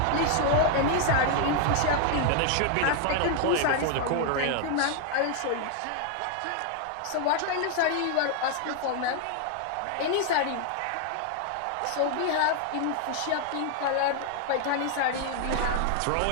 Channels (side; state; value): both; different; correlation 0.00